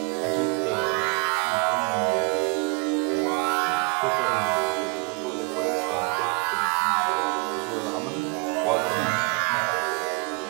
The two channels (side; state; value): left; quieter; 31.1 dB